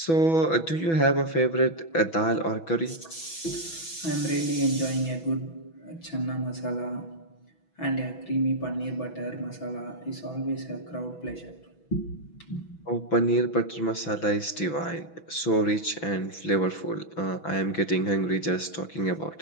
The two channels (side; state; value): right; late; 6.1 ms